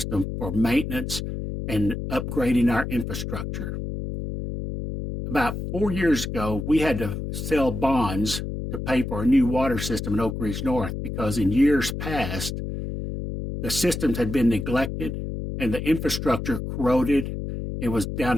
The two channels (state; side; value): noise; left; hum, 5 dB below the sound